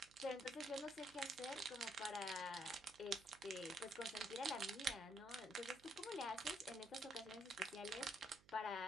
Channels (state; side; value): noise; right; hum, 24 dB below the sound